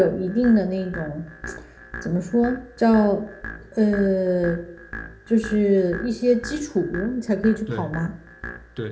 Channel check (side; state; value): both; identical; correlation 1.00